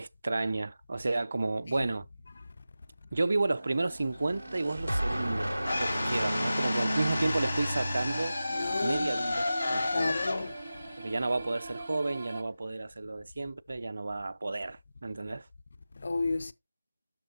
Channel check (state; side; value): inverted; both; correlation -0.95